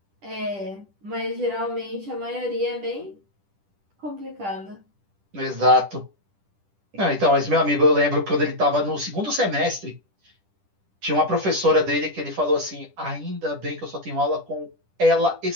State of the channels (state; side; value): late; left; 10 ms